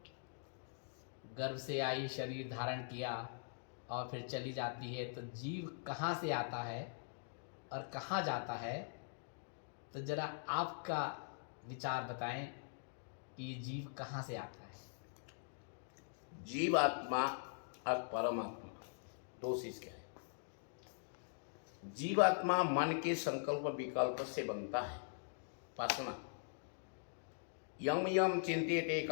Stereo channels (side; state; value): right; silent; digital silence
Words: गर्भ से आई, शरीर धारण किया और फिर चली जाती है, तो जीव कहाँ से आता है और कहाँ जाता है, तो जरा आपका विचार बताएं कि ये जीव कहाँ से आता है। जीवात्मा और परमात्मा दो चीज क्या है। जीवात्मा मन के संकल्प विकल्प से बनता है, वासना। यम यम चिंत्यते